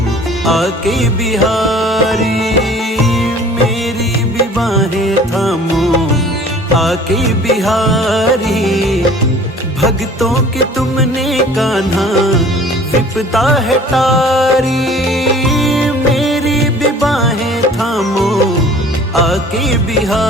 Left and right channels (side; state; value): both; normal; correlation 0.49